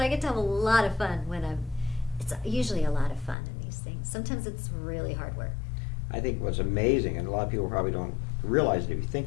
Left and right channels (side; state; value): right; drops out; at 3.4 s